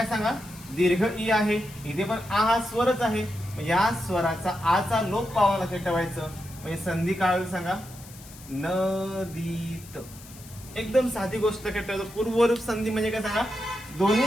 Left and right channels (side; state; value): left; noise; hiss, 19 dB below the sound